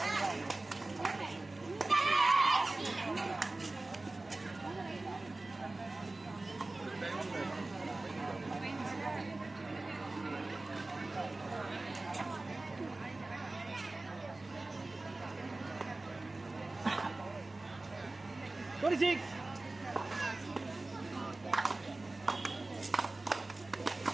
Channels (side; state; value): left; quieter; 3.0 dB